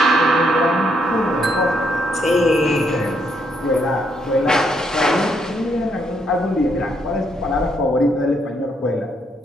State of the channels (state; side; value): normal; both; correlation 0.74